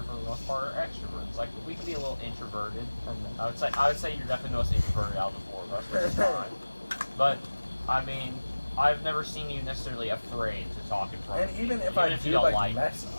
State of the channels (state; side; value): inverted; both; correlation -1.00